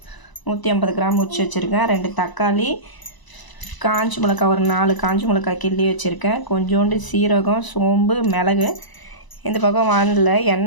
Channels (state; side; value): late; right; 1.0 ms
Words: 150 கிராம் உரிச்சு வச்சுருக்கேன். 2 தக்காளி, காஞ்சி மிளகாய் ஒரு 4 காஞ்சி மிளகாய் கிள்ளி வச்சுருக்கேன். கொஞ்சோண்டு சீரகம், சோம்பு, மிளகு. இந்த பக்கம் வானலில்